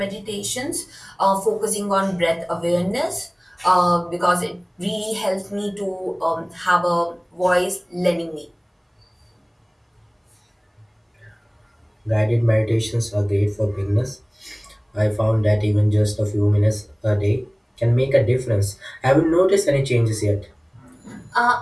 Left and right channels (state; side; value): identical; both; correlation 1.00